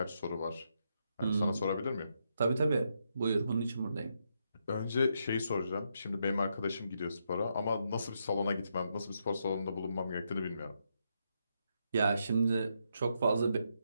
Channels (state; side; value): inverted; both; correlation -0.80